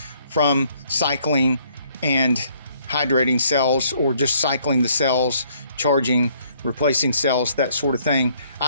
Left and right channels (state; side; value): inverted; both; correlation -0.64